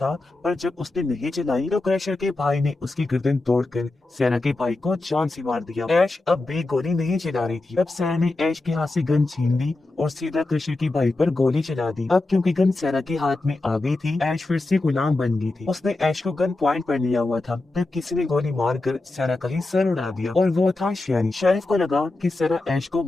पर जब उसने नहीं चलाई तो क्रशर के भाई ने उसकी गर्दन तोड़कर सैना के भाई को जान से मार दिया। ऐश अब भी गोली नहीं चला रही थी। तब सैना ने ऐश के हाथ से गन छीन ली और सीधा क्रशर की भाई पर गोली चला दी। अब क्योंकि गन सैना के हाथ में आ गई थी, ऐश फिर से गुलाम बन गई थी। उसने ऐश को गन पॉइंट पर लिया हुआ था, तब किसी ने गोली मारकर सैना का ही सर उड़ा दिया और वो था शेरिफ। शेरिफ को लगा कि सैना ऐश को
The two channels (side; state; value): right; quieter; 3.0 dB